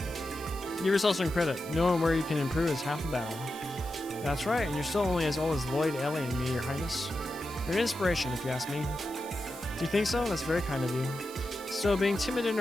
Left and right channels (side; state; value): right; noise; hiss, 16 dB below the sound